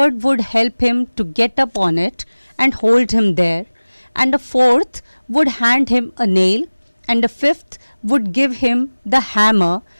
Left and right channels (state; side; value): inverted; both; correlation -1.00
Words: would help him to get up on it and hold him there, and a fourth would hand him a nail, and a fifth would give him the hammer,